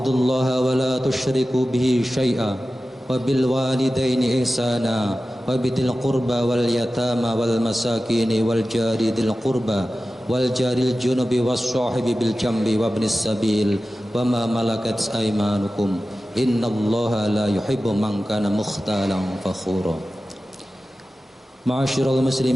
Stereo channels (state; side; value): normal; both; correlation 0.95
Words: wa la tusyriku bihi syai'a wa bil walidaini ihsana wa bidil qurba wal yatama wal masakini wal jari dil qurba wal jaril junubi was sahibi bil jambi wa ibnis sabil wa ma malakat aymanukum innallaha la yuhibbu man kana mukhtalan fakhura. Ma'asyiral